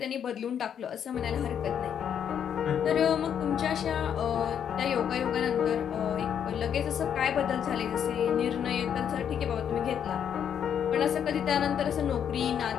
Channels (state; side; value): quieter; right; 8.6 dB